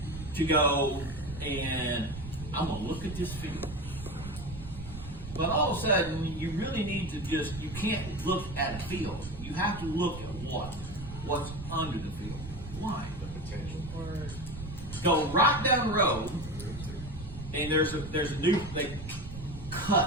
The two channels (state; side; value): noise; right; rumble, 11 dB below the sound